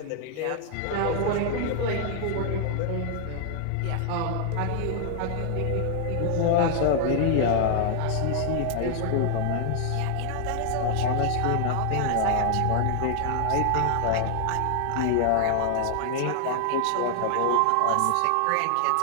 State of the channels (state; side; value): different; both; correlation 0.00